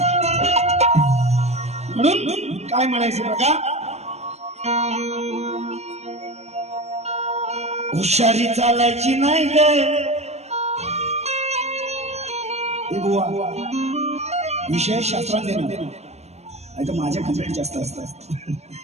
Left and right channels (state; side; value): late; left; 0.31 ms